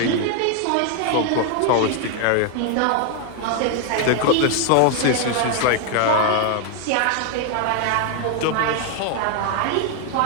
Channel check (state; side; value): different; both; correlation 0.01